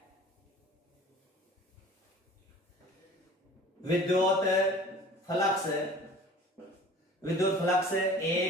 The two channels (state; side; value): normal; both; correlation 0.45